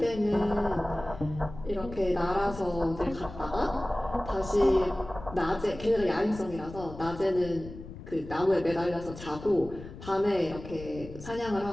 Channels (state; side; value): noise; left; rumble, 13 dB below the sound